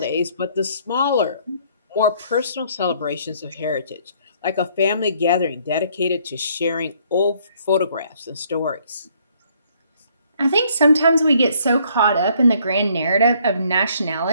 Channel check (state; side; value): inverted; both; correlation -0.64